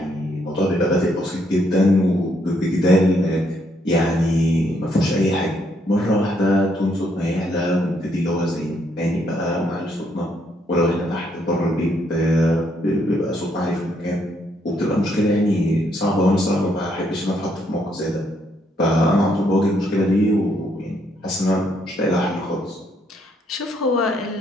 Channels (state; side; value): normal; both; correlation 0.73